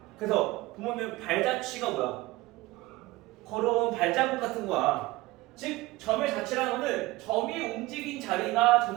그래서 보면 발자취가 뭐야? 걸어온 발자국 같은 거야. 즉 점의 자취라는 거는 점이 움직인 자리가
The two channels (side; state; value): left; quieter; 19.8 dB